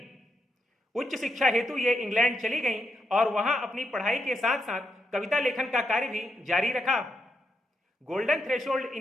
उच्च शिक्षा हेतु ये इंग्लैंड चली गईं और वहां अपनी पढ़ाई के साथ साथ कविता लेखन का कार्य भी जारी रखा। गोल्डन थ्रेशोल्ड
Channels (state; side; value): normal; both; correlation 0.82